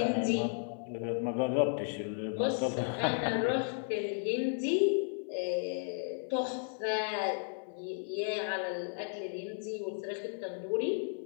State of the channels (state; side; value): silent; right; 55 dB below the other